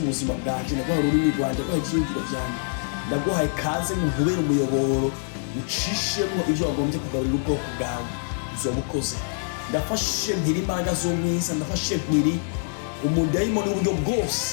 buzima bwanje, ndaguhaye ururimi rwanje, ndaguhaye ivyiyumviro vyanje, ndaguhaye kaze mu nkubera umuyoboro, ucishemwo ivyo wagombye kugaburira ubwoko bwawe. Uzobukoze, ndafashe mpiri imbaraga z'umwiza, ndafashe mpiri umudayimoni w'uburyo bwose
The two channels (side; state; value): right; silent; digital silence